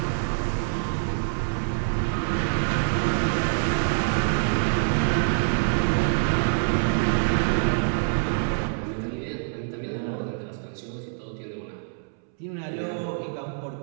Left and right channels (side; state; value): left; silent; 61 dB below the other